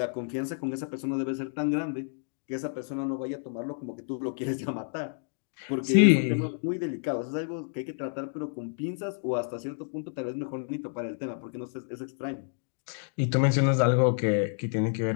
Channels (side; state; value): right; silent; digital silence